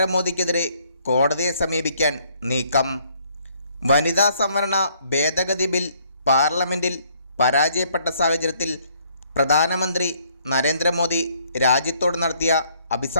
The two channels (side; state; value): both; inverted; correlation -0.65